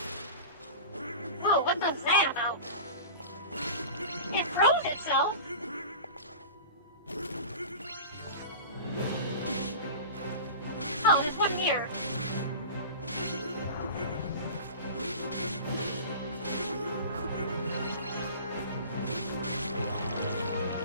Whoa, what was that about? It froze itself! Oh, there's one here.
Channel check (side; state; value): both; inverted; correlation -0.35